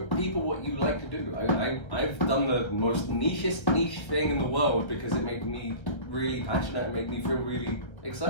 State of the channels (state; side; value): late; right; 1.3 ms